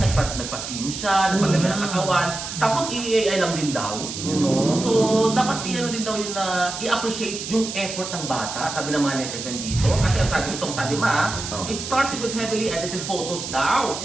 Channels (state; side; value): noise; right; hiss, 7 dB below the sound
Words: siya, nagpagdaga ng katawan. Tapos i-AI lang din daw. You know? So, dapat i-ano din daw yun na i-appreciate yung effort ng bata. Sabi ng mga netizen dito. Kasi ang sabi it started with heavily edited photos daw.